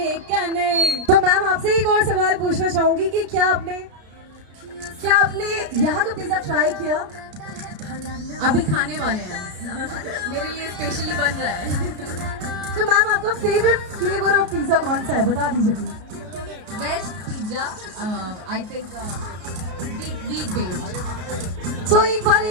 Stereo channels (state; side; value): late; left; 33 ms